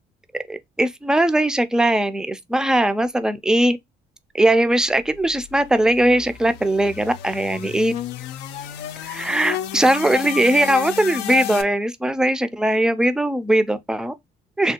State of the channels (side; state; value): both; normal; correlation 0.88